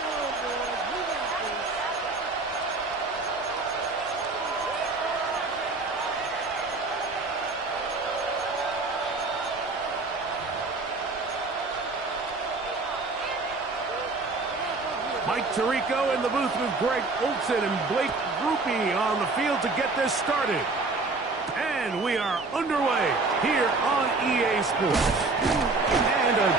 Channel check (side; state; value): left; quieter; 3.6 dB